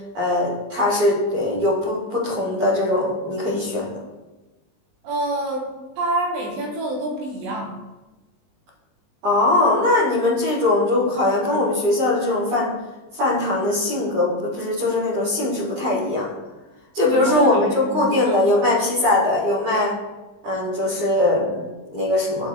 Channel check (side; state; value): left; late; 19 ms